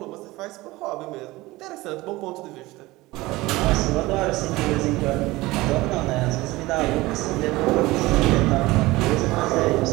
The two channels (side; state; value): left; quieter; 19.9 dB